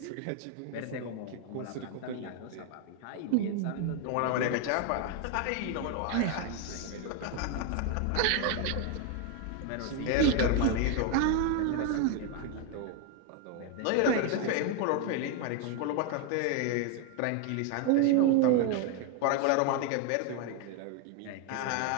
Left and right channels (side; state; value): both; different; correlation 0.01